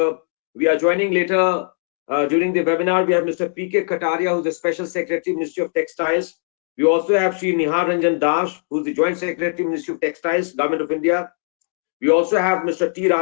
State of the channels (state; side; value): silent; right; 59 dB below the other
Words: joining later during the webinar. We have Mr. P.K. Kataria, who's the Special Secretary, Ministry of Textiles. We also have Sri Nihar Ranjan Das, who's the Joint Secretary, Ministry of Textiles, Government of India. We also have Mr. T.